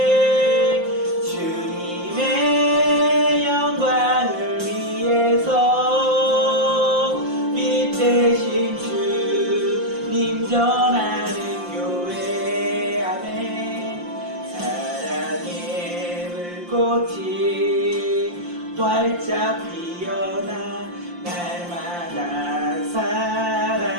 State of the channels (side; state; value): left; late; 5.7 ms